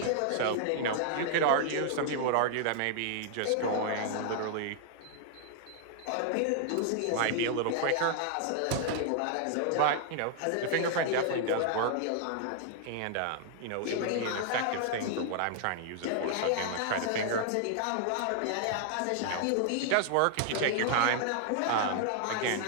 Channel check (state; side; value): different; both; correlation -0.01